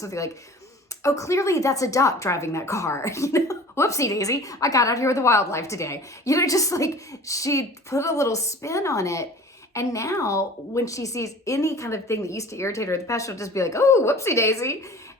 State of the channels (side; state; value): both; normal; correlation 0.43